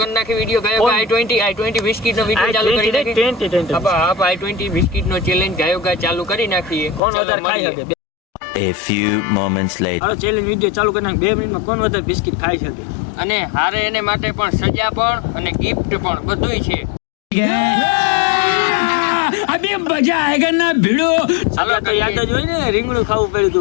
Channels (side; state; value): right; drops out; at 7.0 s